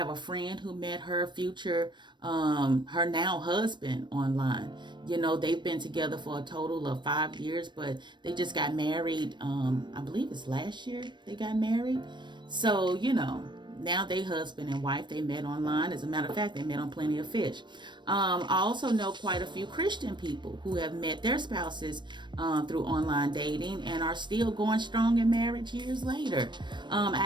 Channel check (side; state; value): left; late; 0.22 ms